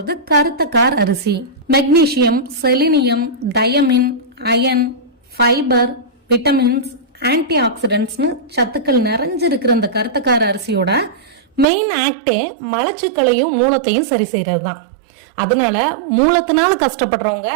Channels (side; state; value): left; drops out; at 11.7 s